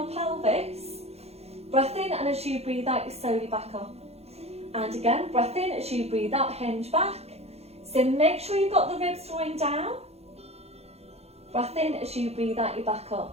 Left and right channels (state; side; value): late; left; 0.30 ms